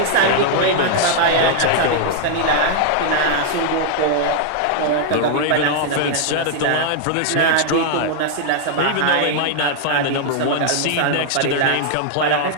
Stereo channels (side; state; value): both; different; correlation -0.01